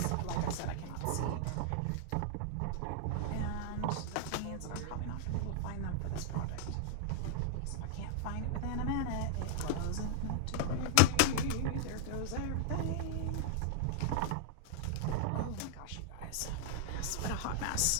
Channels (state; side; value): different; both; correlation -0.01